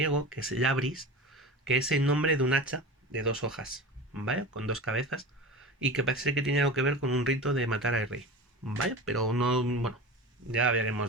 que es labris, que es el nombre de un hacha de dos hojas, ¿vale? Con dos cabezas, y que parece que tiene algo que ver con un rito de matar al rey, ¿vale? Pero no, bueno, ya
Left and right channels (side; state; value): both; normal; correlation 0.31